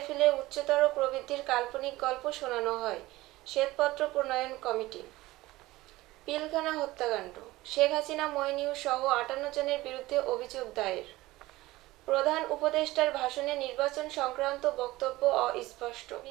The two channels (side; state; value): left; quieter; 18.5 dB